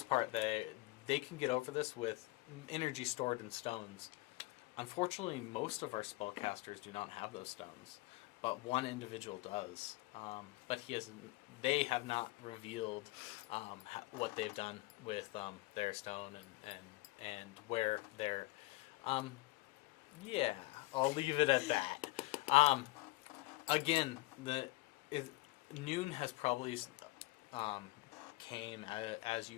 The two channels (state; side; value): quieter; right; 20.7 dB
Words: part, they can get over this with energy stored in stones. Unfortunately, most of our spellcasters do not have those stones, but one individual does. But they have not revealed what they've done with their stone and where they're. Yeah, I'll leave it at that. Again, noon has probably came as